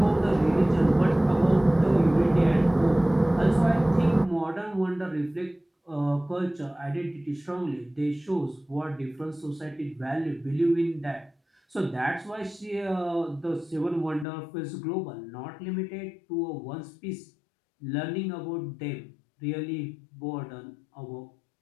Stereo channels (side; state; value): right; drops out; at 14.2 s